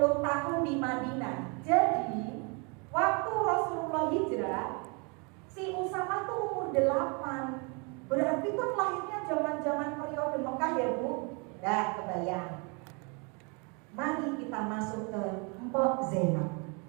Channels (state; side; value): quieter; left; 32.7 dB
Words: tahun di Madinah. Jadi waktu Rasulullah hijrah, si Usama tuh umur 8. Berarti kan lahirnya zaman-zaman periode Mekah ya Bu. Dah kebayang. Mari kita masuk ke Mpok Zainab.